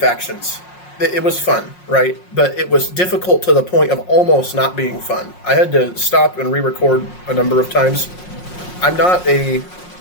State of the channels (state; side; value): late; right; 5.5 ms